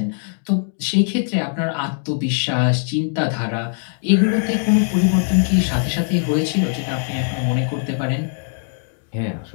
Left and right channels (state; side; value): silent; right; 63 dB below the other